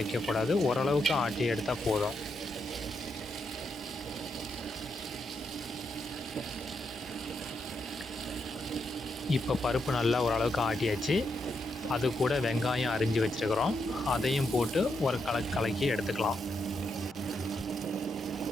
ஓரளவுக்கு ஆட்டி எடுத்தால் போதும். இப்போ பருப்பு நல்லா ஓரளவுக்கு ஆட்டியாச்சு. அது கூட வெங்காயம் அரிஞ்சு வச்சுருக்கிறோம், அதையும் போட்டு ஒரு கலக்கி எடுத்துக்கலாம்.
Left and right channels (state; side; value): normal; both; correlation 0.81